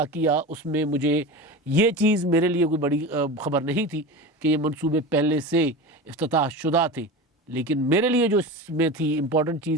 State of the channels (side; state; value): both; normal; correlation 0.28